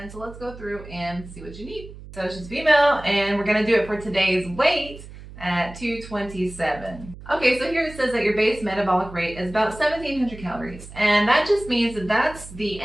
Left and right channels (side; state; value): right; noise; hum, 16 dB below the sound